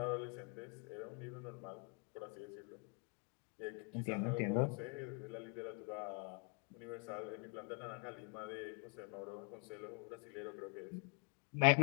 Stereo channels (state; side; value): quieter; right; 34.8 dB